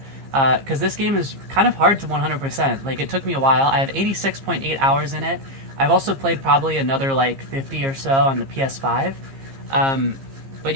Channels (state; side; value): late; left; 15 ms